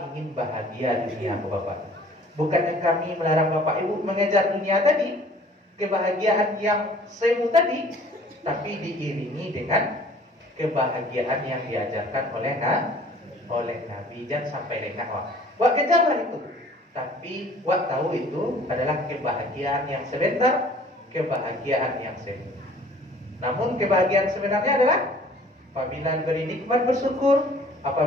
ingin bahagia dunia Bapak. Bukannya kami melarang Bapak Ibu mengejar dunia tadi, kebahagiaan yang semu tadi, tapi diiringi dengan kebahagiaan yang diajarkan oleh Nabi. Jangan sampai lengah wak kejarlah itu. Tapi wak tahu itu adalah kebahagiaan yang sebentar, kebahagiaan yang semu. Namun kebahagiaan sebenarnya adalah apabila diberi nikmat bersyukur,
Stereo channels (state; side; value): normal; both; correlation 0.52